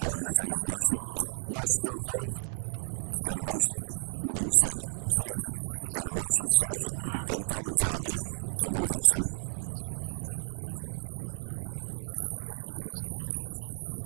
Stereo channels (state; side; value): silent; left; 56 dB below the other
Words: entertain a motion. Motion to approve. Got a motion? Need a second. Second. Got a motion, second. Any public comment? Come on ahead, sir.